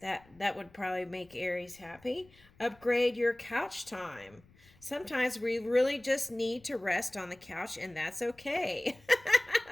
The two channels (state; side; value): noise; left; rumble, 28 dB below the sound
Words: would probably make Aries happy. Upgrade your couch time. Sometimes we really just need to rest on the couch, and that's okay.